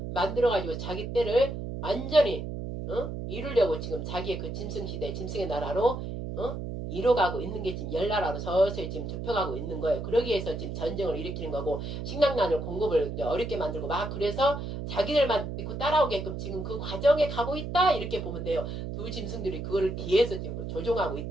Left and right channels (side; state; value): right; noise; hum, 6 dB below the sound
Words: 만들어가지고 자기 때를 완전히 이루려고 지금 자기의 그 짐승 시대, 짐승의 나라로 이뤄가고 있는 게 지금 열나라로 서서히 지금 좁혀가고 있는 거예요. 그러기 위해서 지금 전쟁을 일으키는 거고 식량난을 공급을 이제 어렵게 만들고 막 그래서 자기들만 믿고 따라오게끔 지금 그 과정에 가고 있다 이렇게 보면 돼요. 두 짐승들이 그거를 뒤에서 지금 조종하고